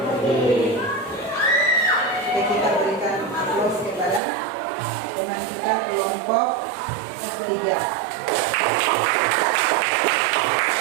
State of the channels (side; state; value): left; drops out; at 4.2 s